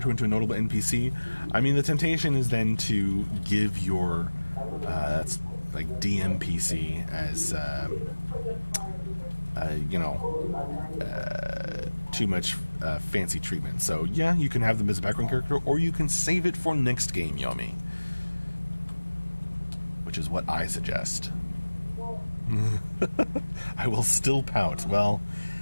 into a notable NPC. I mean, the temptation is then to give your that's like DMPC as too much fancy treatment. So yeah, you can have them as a background character, or you can save it for next game, Yomi, which is what I suggest. I will still pout. Well,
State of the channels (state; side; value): inverted; both; correlation -1.00